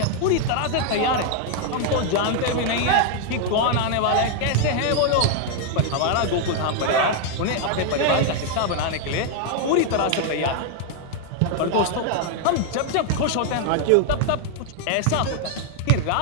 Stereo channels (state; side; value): different; both; correlation 0.00